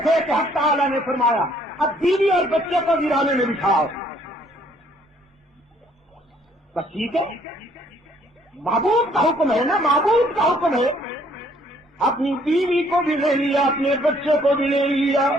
تھے کہ حق تعالیٰ نے فرمایا اب بیوی اور بچے کو ویرانے میں بٹھاؤ۔ بس ٹھیک ہے، معبود کا حکم ہے نا، معبود کا حکم ہے۔ اپنی بیوی کو بھی لے لیا، اپنے بچے کو بھی لے لیا،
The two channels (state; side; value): normal; both; correlation 0.63